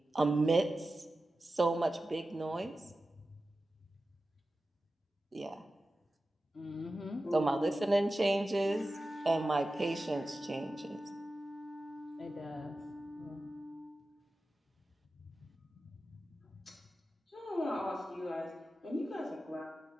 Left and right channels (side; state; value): both; normal; correlation 0.94